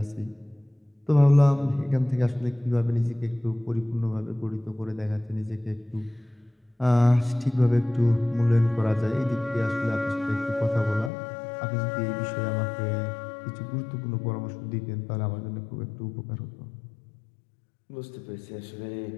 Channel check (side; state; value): right; drops out; at 11.1 s